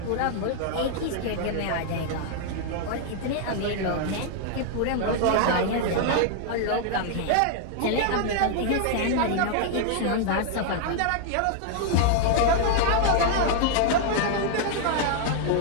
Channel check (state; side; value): different; both; correlation 0.00